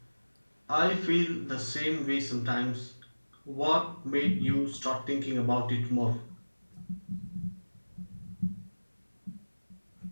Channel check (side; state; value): both; inverted; correlation -1.00